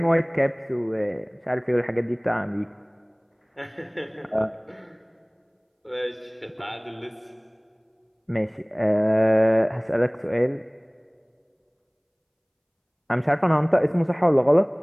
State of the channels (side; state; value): both; identical; correlation 1.00